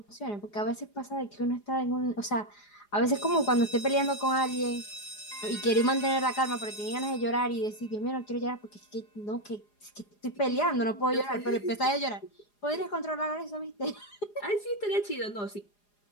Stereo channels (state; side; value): late; right; 4.9 ms